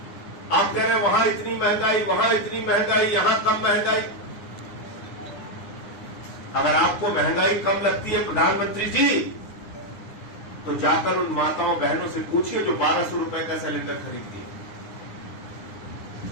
आप कह रहे हैं वहां इतनी महंगाई, वहां इतनी महंगाई, यहां कम महंगाई। अगर आपको महंगाई कम लगती है प्रधानमंत्री जी, तो जाकर उन माताओं बहनों से पूछिए जो 1200 रुपए का सिलेंडर खरीदती है।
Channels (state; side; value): late; right; 9.8 ms